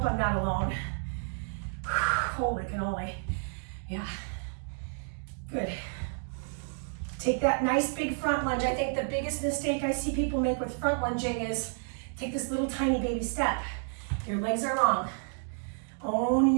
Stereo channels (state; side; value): silent; left; 57 dB below the other